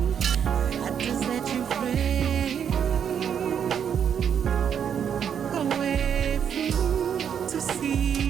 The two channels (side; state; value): left; quieter; 8.2 dB